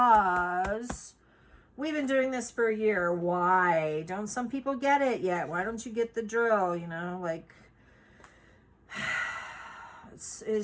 we've been doing this for a year. Why don't some people get it yet? Why don't you get the drill? Like,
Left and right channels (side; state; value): both; identical; correlation 1.00